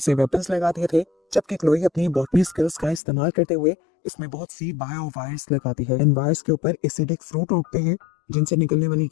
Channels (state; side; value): drops out; right; at 3.0 s